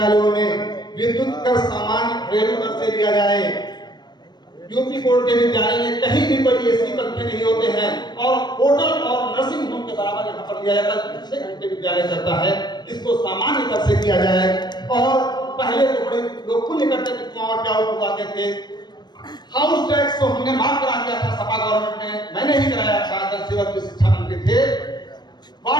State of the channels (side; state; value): right; late; 0.21 ms